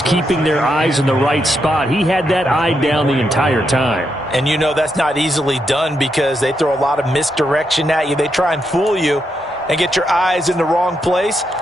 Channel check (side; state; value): both; normal; correlation 0.82